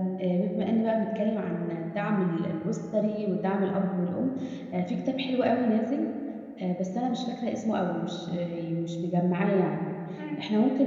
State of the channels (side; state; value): both; identical; correlation 1.00